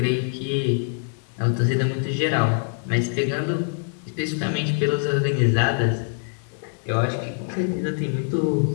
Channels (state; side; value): silent; right; 63 dB below the other